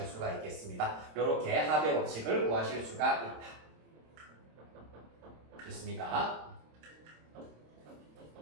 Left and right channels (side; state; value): left; late; 26 ms